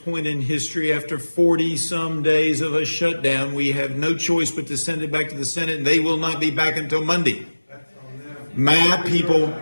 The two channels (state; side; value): inverted; both; correlation -1.00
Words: in history, after 40-some days of a shutdown, we have no choice but to send it back to the Senate, and they will not be back until Monday. My